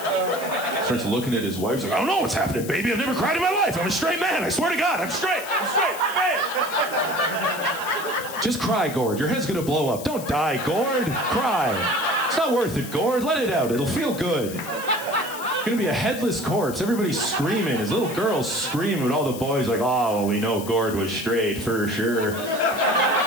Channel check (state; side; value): noise; left; hiss, 13 dB below the sound